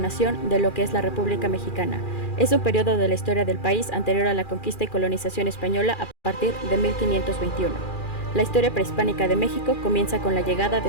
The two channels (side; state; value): right; late; 2.4 ms